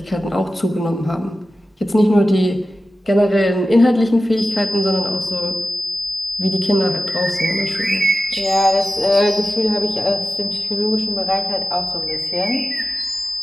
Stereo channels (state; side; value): normal; both; correlation 0.93